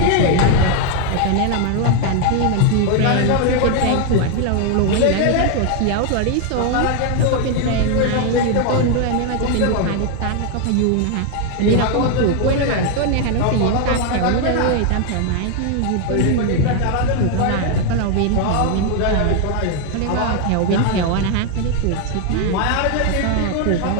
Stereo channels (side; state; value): both; different; correlation 0.01